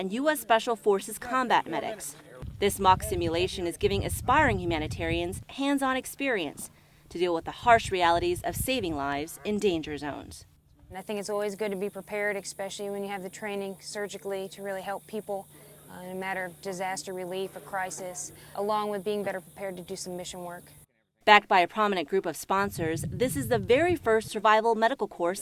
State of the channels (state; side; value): identical; both; correlation 1.00